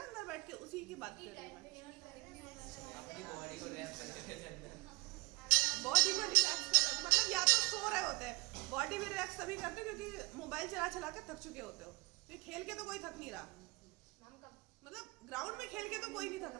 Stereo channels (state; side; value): quieter; left; 25.0 dB